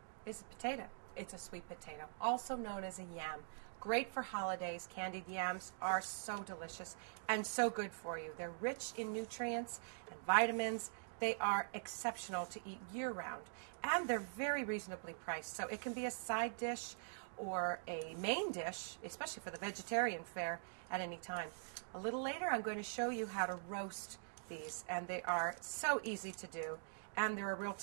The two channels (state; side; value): silent; left; digital silence